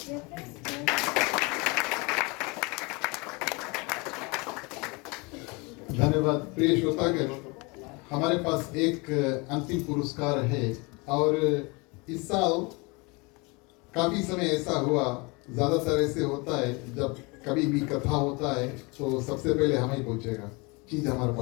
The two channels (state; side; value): quieter; right; 27.7 dB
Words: धन्यवाद। प्रिय श्रोतागण, हमारे पास एक अंतिम पुरस्कार है और इस साल काफी समय ऐसा हुआ, ज्यादातर ऐसे होता है जब कभी भी कथा होता है तो सबसे पहले हमें ही पहुंचेगा, चीज हमारे